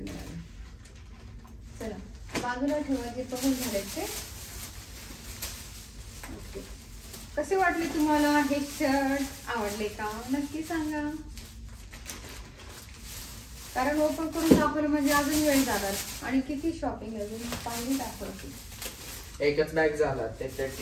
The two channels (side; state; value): both; identical; correlation 1.00